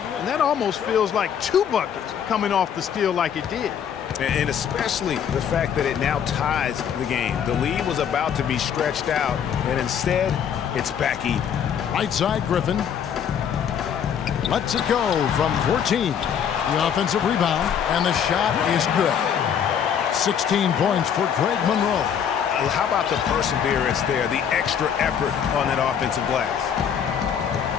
And that almost feels like 2 buckets coming off the steal like it did. And especially the fact that it now ties the game. The lead was about to be stretched out, and instead, it's back even. Right side, Griffin. Lets it go from 14. The offensive rebound, and the shot is good. 16 points for Greg Monroe. How about the perseverance there, the extra effort on that offensive glass?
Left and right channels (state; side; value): quieter; right; 8.2 dB